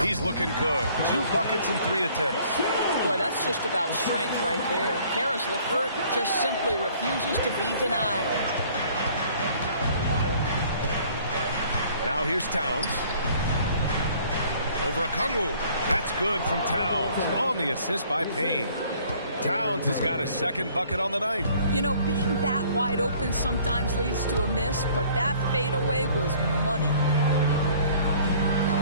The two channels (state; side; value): inverted; both; correlation -0.56